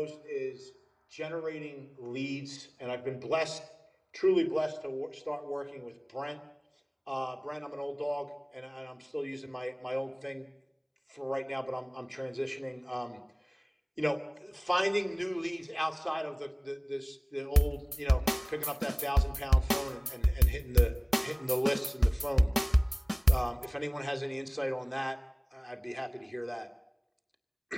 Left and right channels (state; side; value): identical; both; correlation 1.00